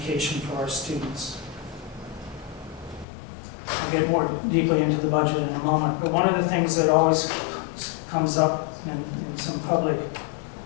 for our students. I'll get more deeply into the budget in a moment, but one of the things that always comes up in some public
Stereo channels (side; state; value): right; drops out; at 3.1 s